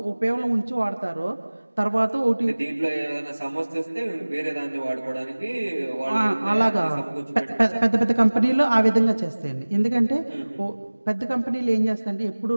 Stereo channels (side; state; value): both; inverted; correlation -1.00